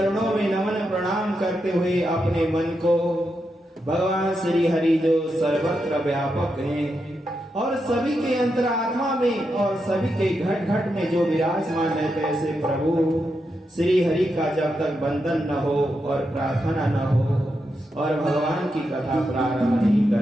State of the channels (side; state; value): both; normal; correlation 0.85